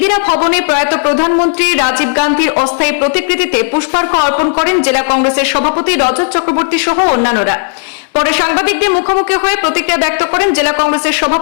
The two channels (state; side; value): silent; right; digital silence